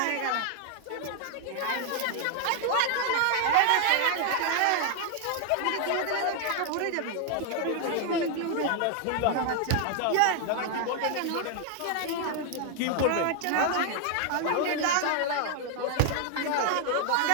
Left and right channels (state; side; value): different; both; correlation 0.00